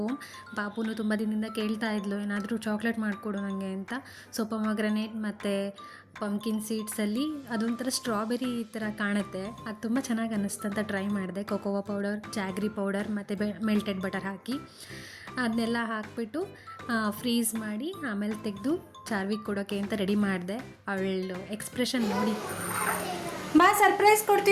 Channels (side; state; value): both; identical; correlation 1.00